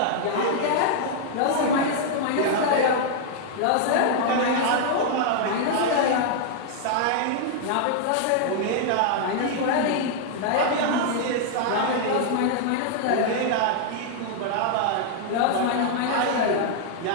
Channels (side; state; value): both; different; correlation -0.01